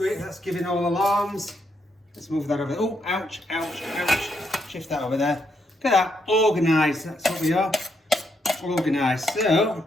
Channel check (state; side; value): normal; both; correlation 0.78